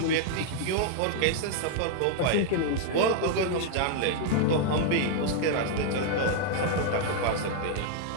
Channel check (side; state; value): both; different; correlation 0.00